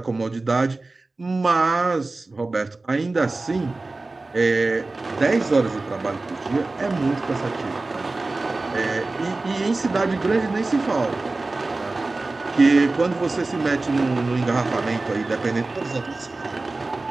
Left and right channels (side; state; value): left; quieter; 3.3 dB